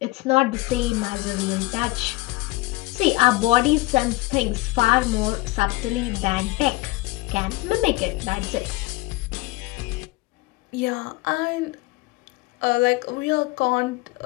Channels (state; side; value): quieter; right; 21.0 dB